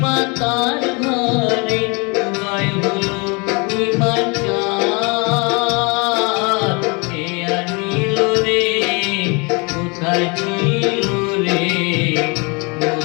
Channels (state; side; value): quieter; right; 30.4 dB